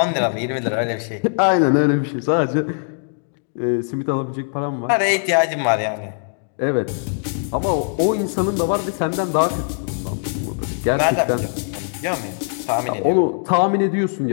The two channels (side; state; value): right; silent; digital silence